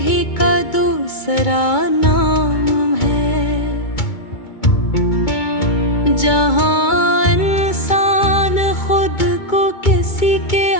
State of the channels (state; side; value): late; right; 2.2 ms